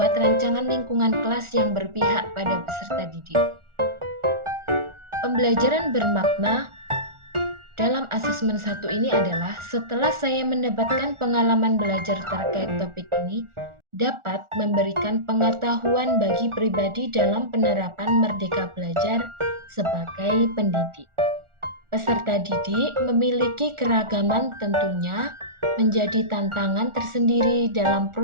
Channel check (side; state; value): left; late; 1.4 ms